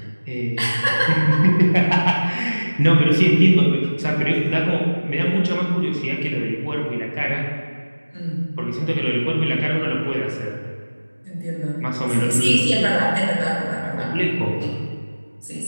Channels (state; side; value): inverted; both; correlation -1.00